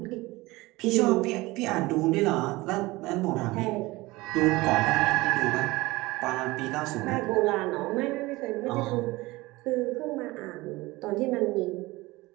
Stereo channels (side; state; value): left; quieter; 20.8 dB